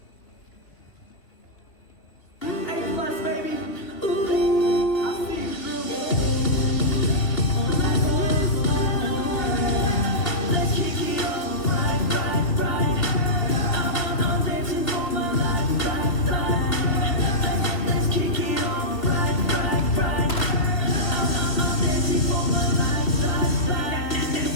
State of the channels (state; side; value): late; right; 3.3 ms